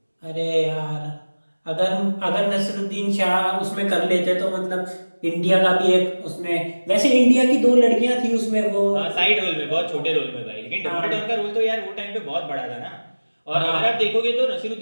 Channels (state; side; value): inverted; both; correlation -1.00